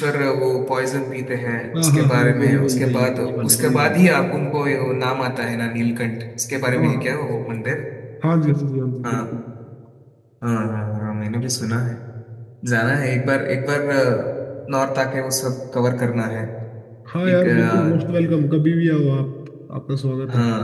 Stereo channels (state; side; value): identical; both; correlation 1.00